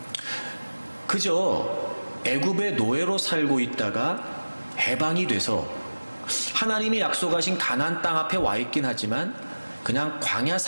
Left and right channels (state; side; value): inverted; both; correlation -1.00